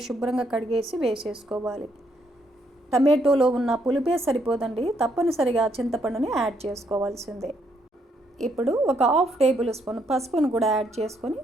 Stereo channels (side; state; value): both; normal; correlation 0.73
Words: శుభ్రంగా కడిగేసి వేసేసుకోవాలి. టమాటోలో ఉన్న పులుపే సరిపోదండి, తప్పనిసరిగా చింతపండుని యాడ్ చేసుకోవాల్సిందే. ఇప్పుడు ఒక 1/2 టేబుల్ స్పూన్ పసుపును కూడా యాడ్ చేసుకొని